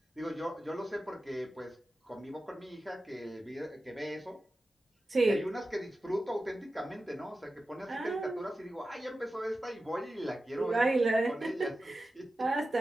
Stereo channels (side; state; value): both; normal; correlation 0.93